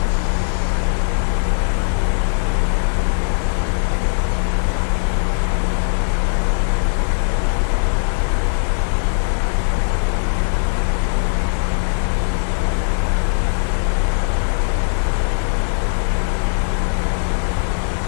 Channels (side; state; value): right; silent; digital silence